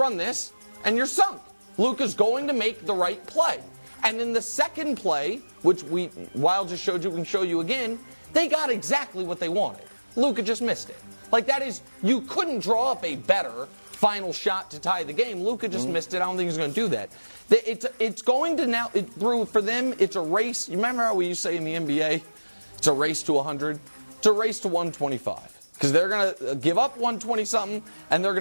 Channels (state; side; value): inverted; both; correlation -1.00